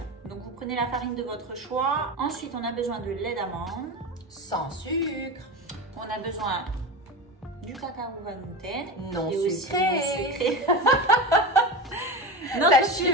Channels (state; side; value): normal; both; correlation 0.25